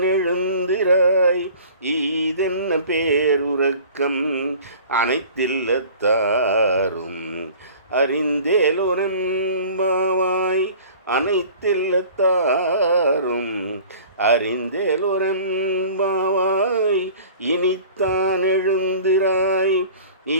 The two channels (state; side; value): inverted; both; correlation -0.45